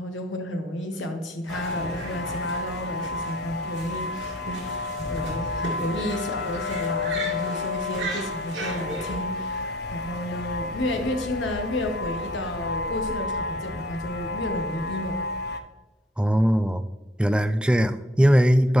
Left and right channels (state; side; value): normal; both; correlation 0.56